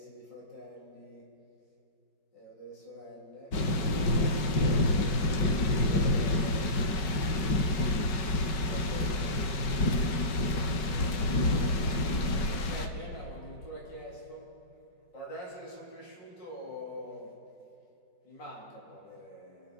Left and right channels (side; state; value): right; late; 5.2 ms